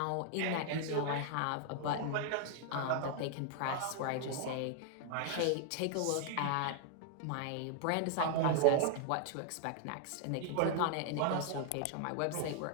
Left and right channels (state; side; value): different; both; correlation 0.00